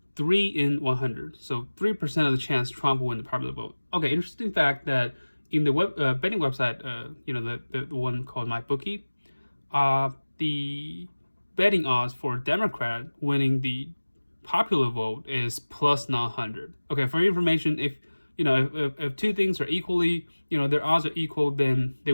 3 in 100. So 3% of the chance Trump will win the popular vote. Okay, interesting fact that in the betting website, the one called MyBookie, the betting odds for Democrat winning the popular vote is plus 900. Okay, for your information, if two things are equally, their odds are equal, then they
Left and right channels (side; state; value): both; inverted; correlation -1.00